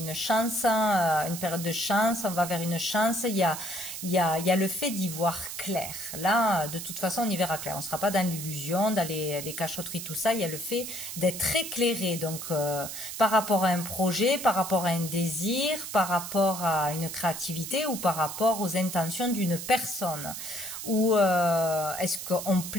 chance, une période de chance. On va vers une chance. Il y a le fait d'y voir clair. Là, de toute façon, on y verra clair. On ne sera pas dans l'illusion, dans les cachotteries, tout ça. Il y a le fait d'être éclairé. Donc, par rapport à un projet, par rapport à un désir, par rapport à une créativité ou par rapport aux intentions d'une personne. Ou est-ce qu'on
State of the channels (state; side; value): noise; right; hiss, 8 dB below the sound